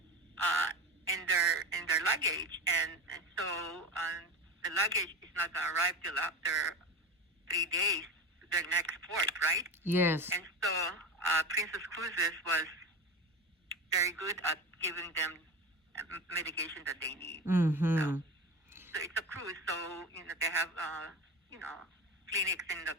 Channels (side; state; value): both; normal; correlation 0.25